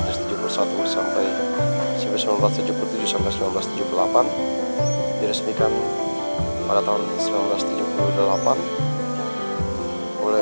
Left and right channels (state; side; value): inverted; both; correlation -1.00